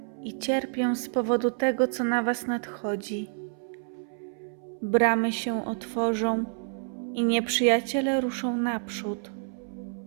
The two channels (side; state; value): left; silent; 59 dB below the other